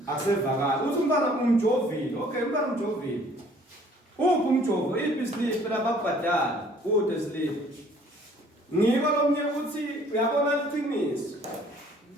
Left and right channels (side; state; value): both; normal; correlation 0.57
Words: akusevakala uthi umfana umjovile. Okay umfana umjovile uphi umjovo iphi slip lababhadala kude slip ngiko lomnye uthi uyabona liqiniso